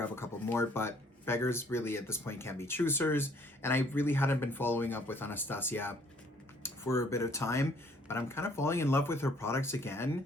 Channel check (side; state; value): both; normal; correlation 0.61